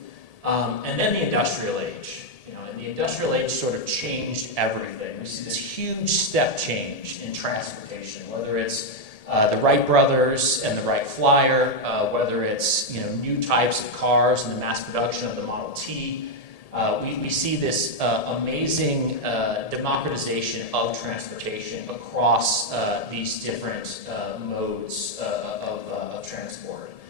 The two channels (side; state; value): right; late; 1.8 ms